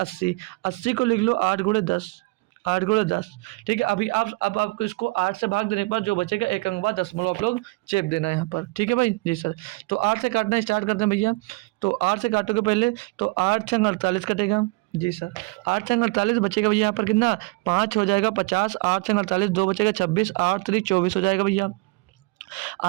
80 को लिख लो 8 गुणे 10 8 गुणे 10। ठीक है, अभी आप अब आपको इसको 8 से भाग देने पर जो बचेगा एक अंक बाद दशमलव आप लोग चेप देना है यहाँ पर। ठीक है भाई, जी सर। तो 8 से काटना स्टार्ट करते हैं भैया। तो 8 से काटोगे पहले तो 8 छंग 48 कटेगा। जी सर, 8 छंग 48 बचेगा भैया यहाँ पर कितना 5 हो जाएगा 50, 8 छंग 48 2 बचेगा 26, 8 3 24 हो जाएगा भैया।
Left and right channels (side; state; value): left; quieter; 24.7 dB